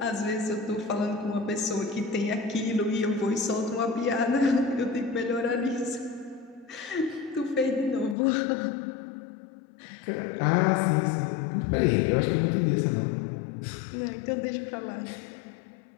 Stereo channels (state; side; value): drops out; right; at 8.2 s